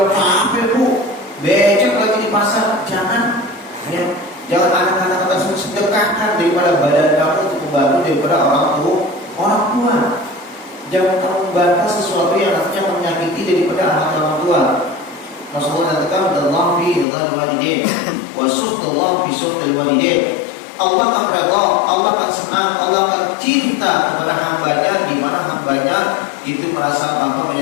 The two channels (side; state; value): right; drops out; at 17.1 s